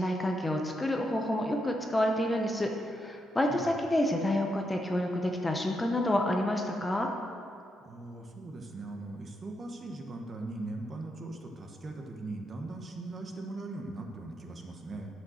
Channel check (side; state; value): both; normal; correlation 0.82